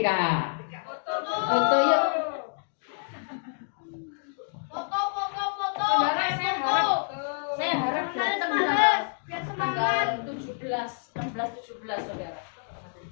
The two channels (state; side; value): silent; right; digital silence